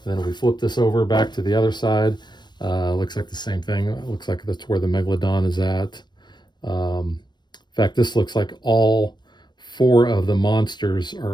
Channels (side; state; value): right; late; 0.21 ms